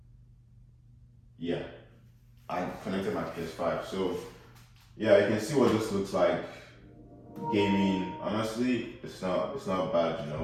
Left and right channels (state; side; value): identical; both; correlation 1.00